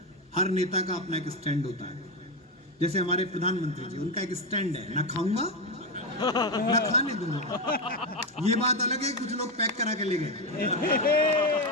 हर नेता का अपना एक स्टैंड होता है। जैसे हमारे प्रधानमंत्री जी, उनका एक स्टैंड है, ना खाऊंगा ना खाने दूंगा। ये बात अलग है, कुछ लोग पैक करा के ले गए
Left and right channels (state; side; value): normal; both; correlation 0.11